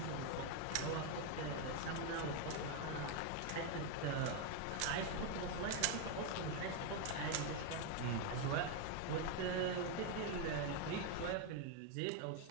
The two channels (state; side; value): different; both; correlation 0.01